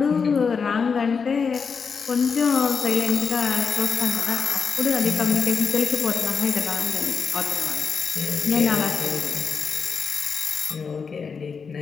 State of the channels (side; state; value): right; quieter; 5.7 dB